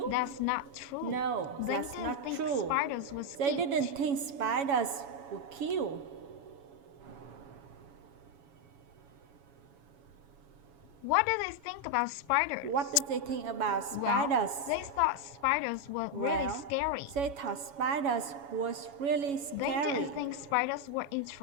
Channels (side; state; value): left; late; 7.1 ms